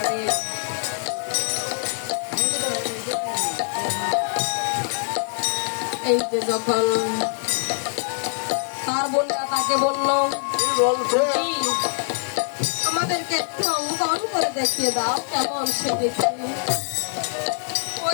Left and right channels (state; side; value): silent; right; 62 dB below the other